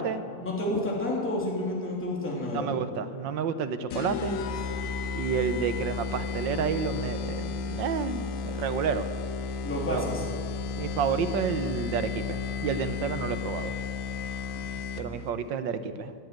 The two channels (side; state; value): both; normal; correlation 0.13